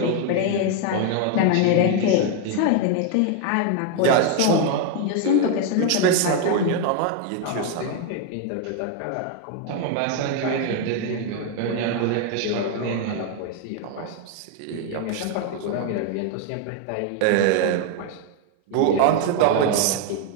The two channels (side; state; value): both; different; correlation 0.01